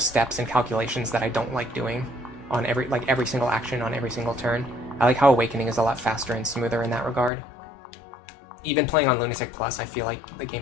and calculations that I don't like doing on every single action on every single turn. I like how Awakening is a lot faster and smoother in that regard. Even playing on Lunatic Plus, I feel like the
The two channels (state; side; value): drops out; right; at 7.3 s